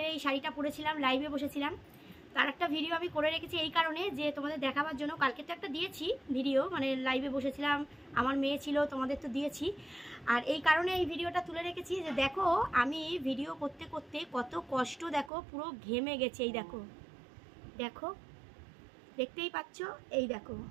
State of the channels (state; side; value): drops out; left; at 15.3 s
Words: এই শাড়িটা পরেছিলাম, লাইভে বসেছিলাম। তার একটা ভিডিও আমি করে রেখেছি এই কারণে যে তোমাদের দেখাবার জন্য। কালকে তো একটা দিয়েছি ভিডিও, মানে লাইভে বসেছিলাম, আমার মেয়ে ছিল, তোমাদের তো দিয়েছি। আর এই কারণে এই ভিডিওটা তুলে রেখেছি যে দেখো আমি ভিডিও করতে করতে কত কষ্ট, দেখো পুরো ঘেমে গেছে। এই দেখো, দেখো দেখতেই পাচ্ছ, এই দেখো